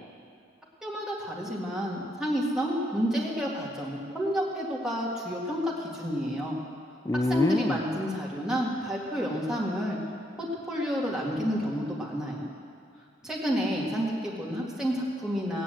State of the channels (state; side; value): normal; both; correlation 0.76